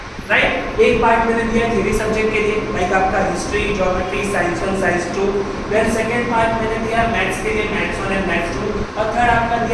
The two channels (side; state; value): both; identical; correlation 1.00